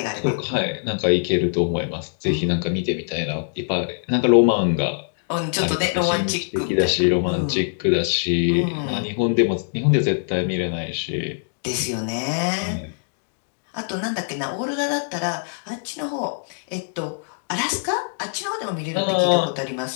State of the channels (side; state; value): right; silent; digital silence